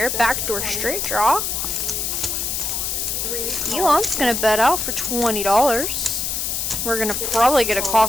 Backdoor straight draw. Elon's gonna bet out for $20. We're gonna probably get a call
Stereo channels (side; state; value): left; noise; hiss, 1 dB below the sound